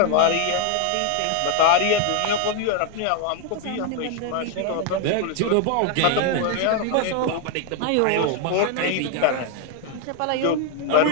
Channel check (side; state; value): both; different; correlation 0.01